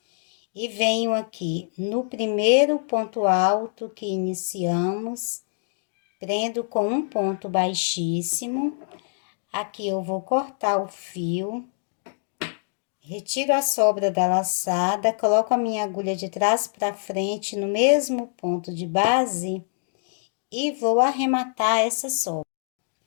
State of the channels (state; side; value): silent; right; digital silence